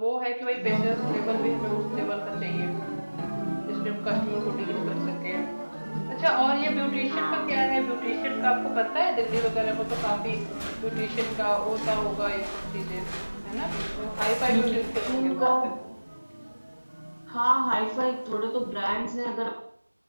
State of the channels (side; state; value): both; inverted; correlation -1.00